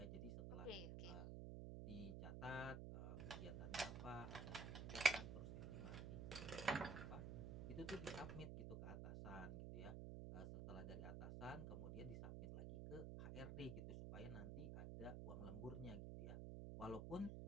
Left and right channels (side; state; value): right; noise; hum, 3 dB below the sound